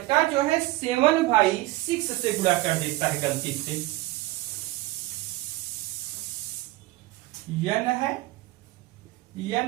जो है 7/6 से गुणा कर देता है गलती से। n है,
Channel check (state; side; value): quieter; left; 18.9 dB